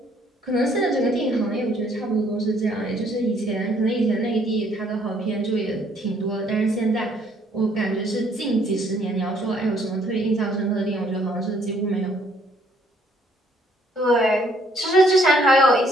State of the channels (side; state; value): both; normal; correlation 0.65